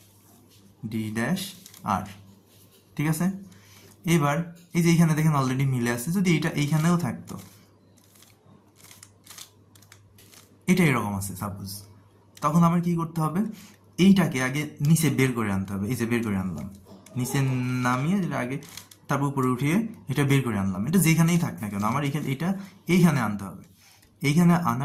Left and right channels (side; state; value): both; identical; correlation 1.00